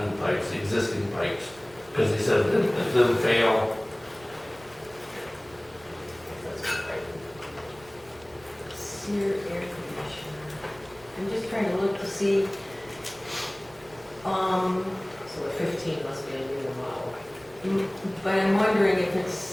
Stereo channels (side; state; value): right; noise; rumble, 25 dB below the sound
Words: new pipes, the existing pipes. Because they said that if them fail, sear air conditioner. I'm just trying to look to see, So the 15 must be a newer model. but I'm wondering if